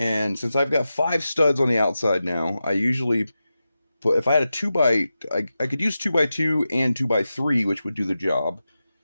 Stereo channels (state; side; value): inverted; both; correlation -0.92